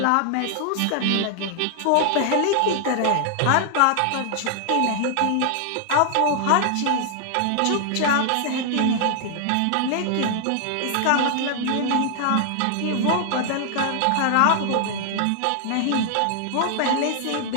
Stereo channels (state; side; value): different; both; correlation 0.00